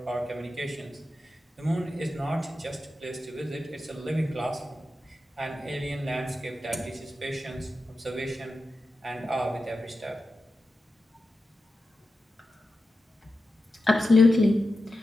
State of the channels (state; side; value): normal; both; correlation 0.91